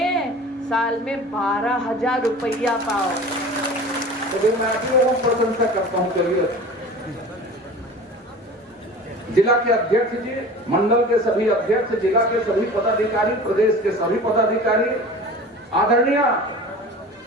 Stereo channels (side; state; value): both; normal; correlation 0.38